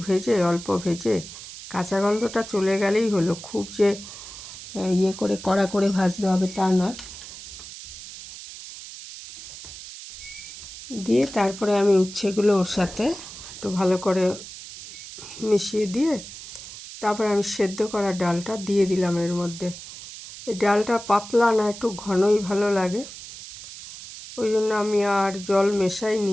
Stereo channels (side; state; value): right; noise; hiss, 13 dB below the sound